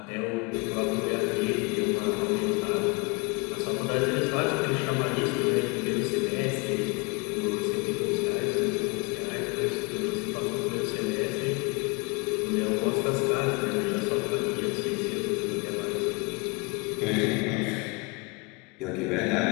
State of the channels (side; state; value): right; quieter; 29.4 dB